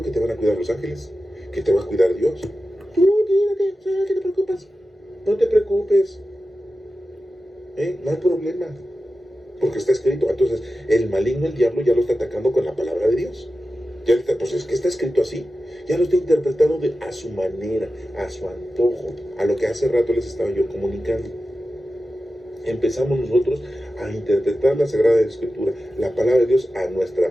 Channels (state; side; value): normal; both; correlation 0.93